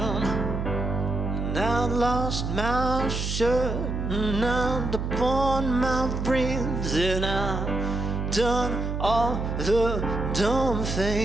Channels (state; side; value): noise; right; hum, 3 dB below the sound